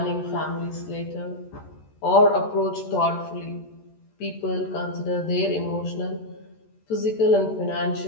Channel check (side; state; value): right; late; 14 ms